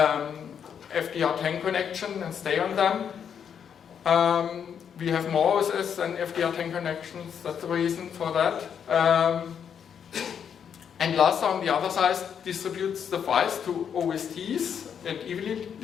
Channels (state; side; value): quieter; right; 7.8 dB